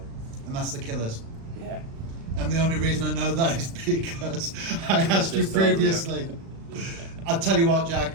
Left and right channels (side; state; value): left; late; 36 ms